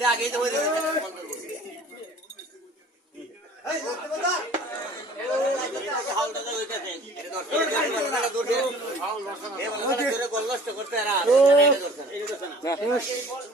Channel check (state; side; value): normal; both; correlation 0.49